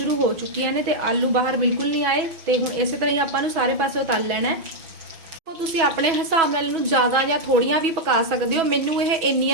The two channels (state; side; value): late; left; 6.1 ms